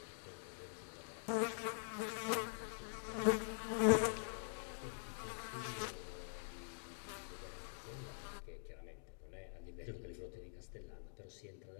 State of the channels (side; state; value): right; silent; digital silence